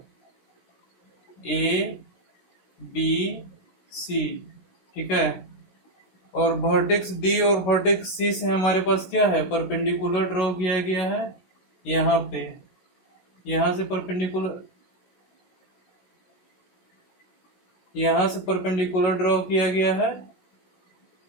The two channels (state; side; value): late; right; 16 ms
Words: ABC। ठीक है, और वर्टेक्स B और वर्टेक्स C से हमारे पास क्या है, परपेंडिकुलर ड्रॉ किया गया है। यहाँ पे, यहाँ से परपेंडिकुलर ड्रॉ किया गया है।